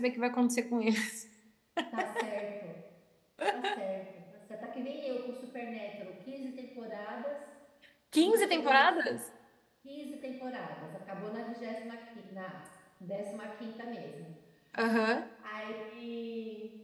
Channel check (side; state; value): both; identical; correlation 1.00